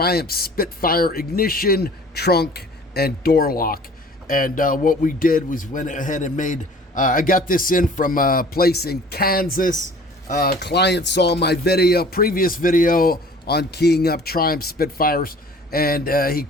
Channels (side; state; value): both; normal; correlation 0.48